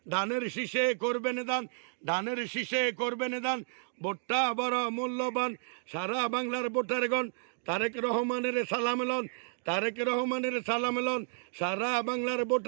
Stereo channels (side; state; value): left; silent; digital silence